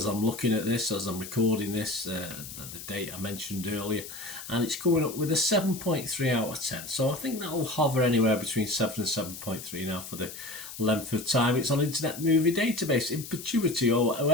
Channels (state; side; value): noise; left; hiss, 12 dB below the sound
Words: I'm looking at this, as I'm recording this, the date I mentioned earlier, and it's coming up with a 7.3 out of 10. So I think that'll hover anywhere between 7 and 7.3 now for the length of time it's on Internet Movie Database in perpetuity, or